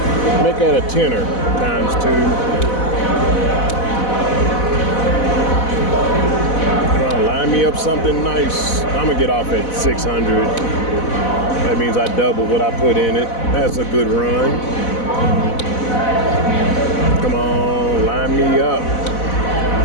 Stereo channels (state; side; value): late; right; 4.0 ms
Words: Make that a tenner times two. Line me up something nice. I'm gonna get off at 600. That means I double what I put in it. That's a good run. Come on, line me up.